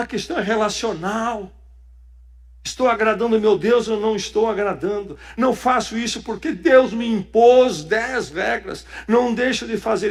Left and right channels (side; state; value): both; identical; correlation 1.00